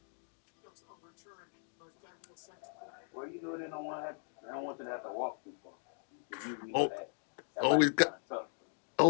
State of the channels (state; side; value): silent; right; digital silence